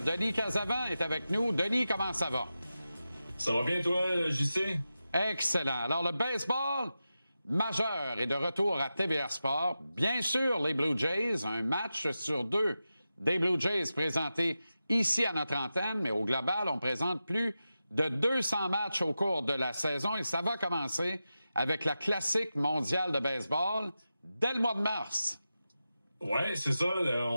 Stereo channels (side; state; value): both; inverted; correlation -0.92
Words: Casavant est avec nous. Denis, comment ça va? Ça va bien, toi, JC? Excellent. Alors, le baseball majeur est de retour à TVA Sport. Bien sûr, les Blue Jays, un match sur deux des Blue Jays présentés ici à notre antenne, mais au global, on présente plus de 200 matchs au cours de la saison et ça va commencer avec la classique mondiale de baseball dès le mois de mars. Ouais, c'est ça.